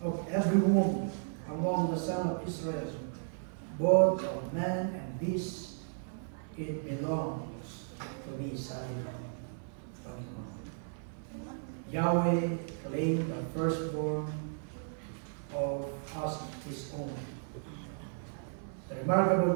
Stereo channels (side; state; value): left; silent; 55 dB below the other